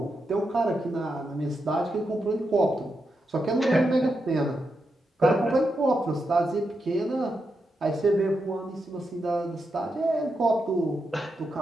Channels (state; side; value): normal; both; correlation 0.85